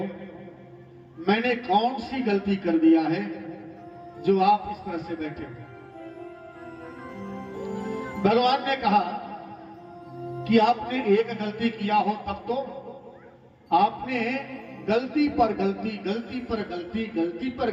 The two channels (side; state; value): both; identical; correlation 1.00